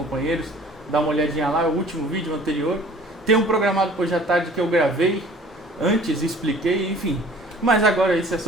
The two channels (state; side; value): normal; both; correlation 0.50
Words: Dá uma olhadinha lá, é o último vídeo anterior. Tem um programado para hoje à tarde que eu gravei antes, expliquei, enfim. Mas agora isso é